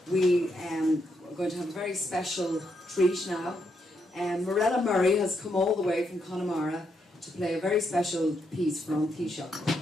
we are going to have a very special treat now. Mirella Murray has come all the way from Connemara to play a very special piece from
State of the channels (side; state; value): both; normal; correlation 0.79